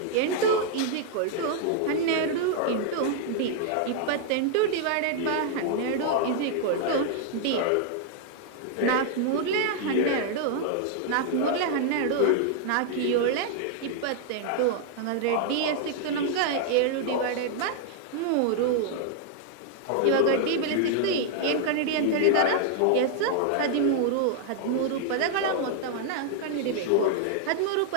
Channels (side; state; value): both; different; correlation -0.01